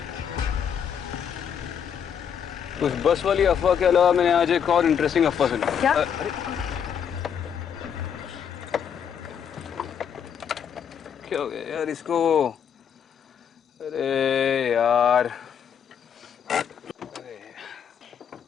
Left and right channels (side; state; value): right; quieter; 7.9 dB